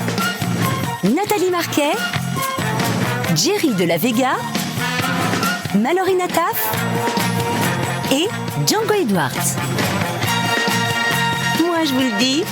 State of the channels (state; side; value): identical; both; correlation 1.00